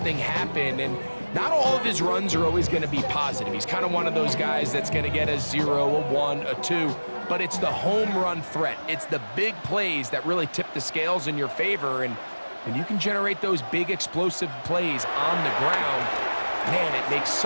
happen. And not all of his runs are always going to be positive. He's kind of one of those guys that's going to get a 0, a 1, a 2. But it's the home run threat. It's the big plays that really tip the scales in your favor. And you can generate those big explosive plays on the ground. Man, it makes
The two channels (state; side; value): inverted; both; correlation -1.00